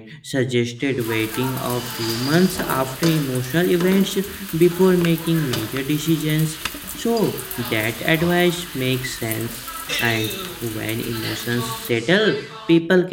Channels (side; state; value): both; identical; correlation 1.00